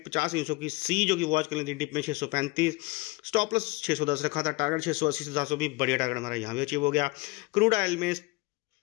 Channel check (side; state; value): right; quieter; 23.9 dB